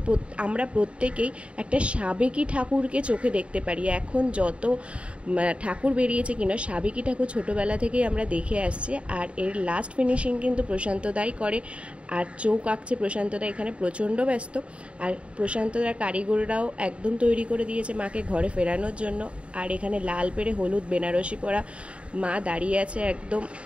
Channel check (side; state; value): left; late; 0.060 ms